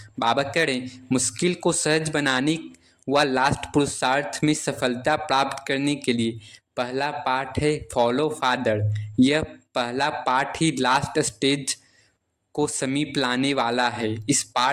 बाबा करें मुश्किल को सहज बनाने व लास्ट पुरुषार्थ में सफलता प्राप्त करने के लिए पहला पाठ है फॉलो फादर। यह पहला पाठ ही लास्ट स्टेज को समीप लाने वाला है। इस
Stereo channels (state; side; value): identical; both; correlation 1.00